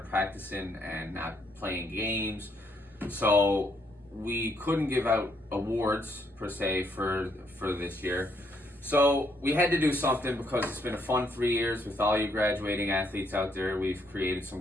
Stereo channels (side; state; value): both; normal; correlation 0.73